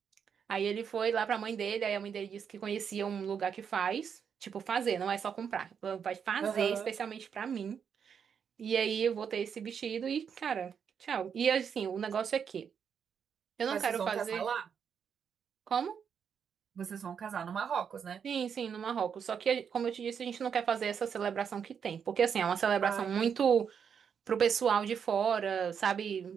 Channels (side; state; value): left; quieter; 7.2 dB